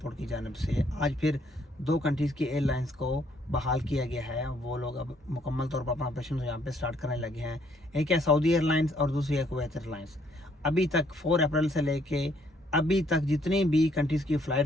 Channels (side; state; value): both; normal; correlation 0.67